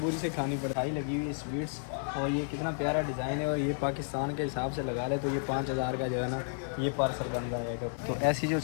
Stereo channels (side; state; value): right; silent; digital silence